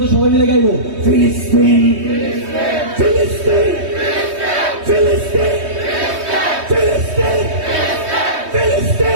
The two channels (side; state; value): left; late; 3.2 ms